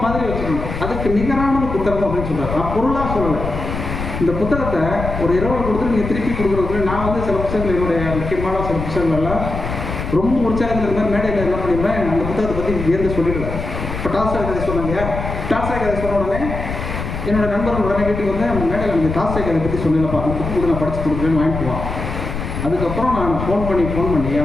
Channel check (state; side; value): noise; left; rumble, 6 dB below the sound